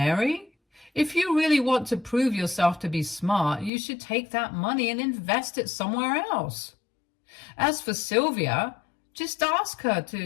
If you really want to prove yourself to be smart, you should take that money and invest it somewhere else. As for Sylvia, just ask her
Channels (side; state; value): right; drops out; at 3.7 s